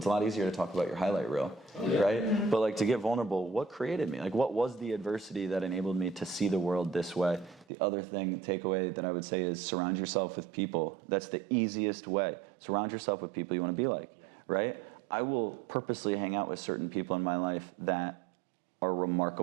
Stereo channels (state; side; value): drops out; left; at 7.7 s